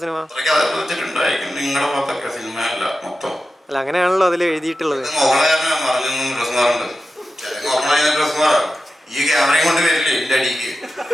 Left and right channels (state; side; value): normal; both; correlation 0.92